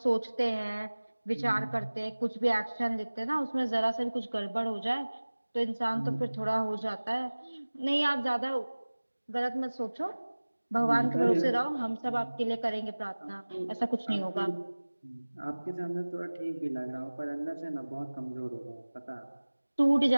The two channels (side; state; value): both; inverted; correlation -1.00